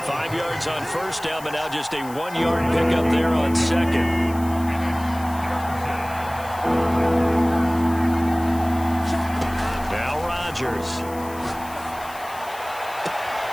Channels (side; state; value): left; noise; hiss, 18 dB below the sound